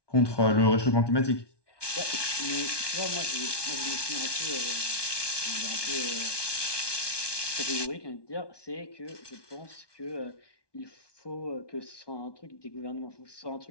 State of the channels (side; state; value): right; late; 1.2 ms